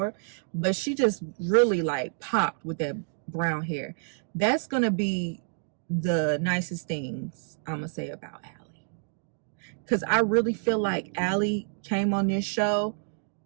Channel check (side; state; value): left; silent; digital silence